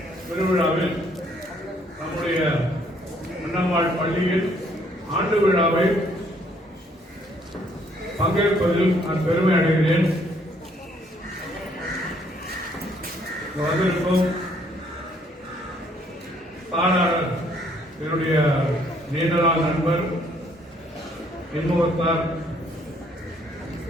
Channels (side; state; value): both; normal; correlation 0.65